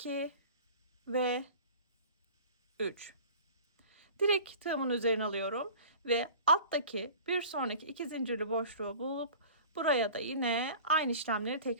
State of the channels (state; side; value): inverted; both; correlation -0.42